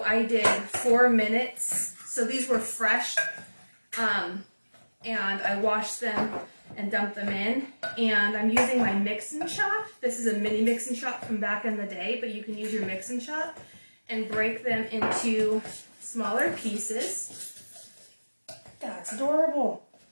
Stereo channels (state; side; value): inverted; both; correlation -1.00